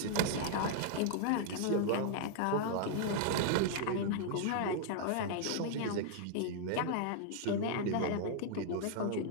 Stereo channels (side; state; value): both; different; correlation -0.01